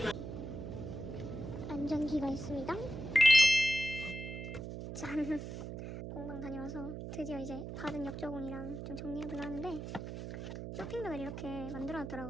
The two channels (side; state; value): right; noise; hum, 7 dB below the sound